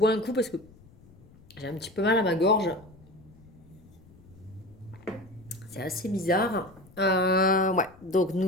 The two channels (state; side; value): noise; left; rumble, 25 dB below the sound